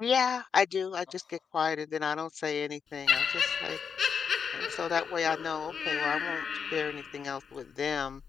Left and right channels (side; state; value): right; quieter; 6.5 dB